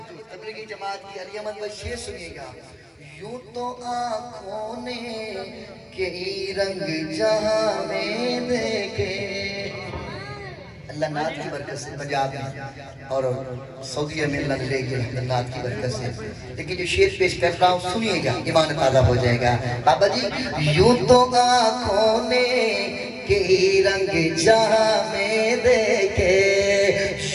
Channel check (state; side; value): identical; both; correlation 1.00